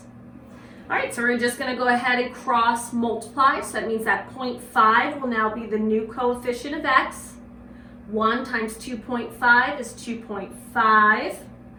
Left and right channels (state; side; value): identical; both; correlation 1.00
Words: All right, so we're just going to go ahead and cross multiply. So that means that 0.5 will now be the new coefficient of x. 1 times 2.5 is 2.5.